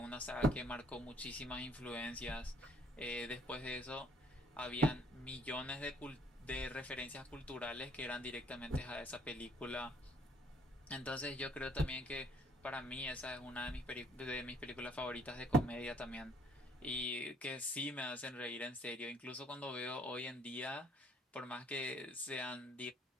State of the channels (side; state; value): both; normal; correlation 0.62